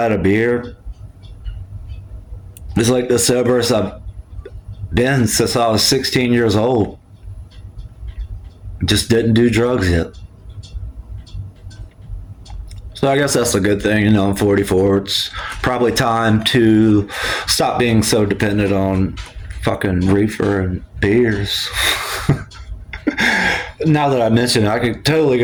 had a beer. It's like the soberest I've been since I was 16 years old. Just didn't do drugs yet. So I guess that's a good thing. You know, I'm 44. It's probably time to stop being so dependent on fucking reefer and beers. Now that I mention it, I could totally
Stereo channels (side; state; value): both; identical; correlation 1.00